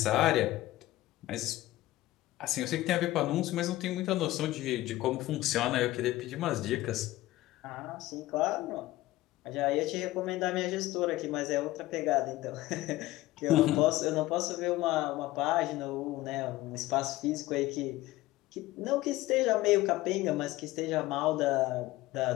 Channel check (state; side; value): quieter; right; 17.1 dB